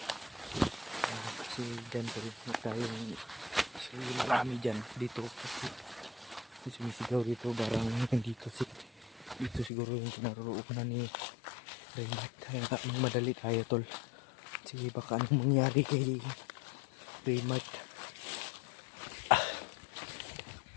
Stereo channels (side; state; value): right; drops out; at 9.7 s